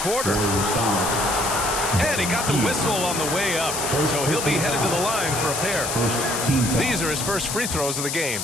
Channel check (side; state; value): left; noise; hiss, 3 dB below the sound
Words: And he got the whistle on the way up, so he'll be headed to the line for a pair. These are his first free throws of the game.